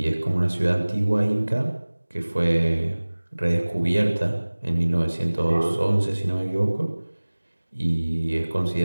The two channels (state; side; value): inverted; both; correlation -1.00